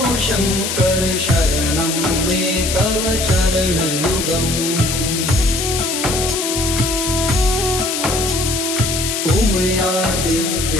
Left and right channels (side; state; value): left; noise; hiss, 2 dB below the sound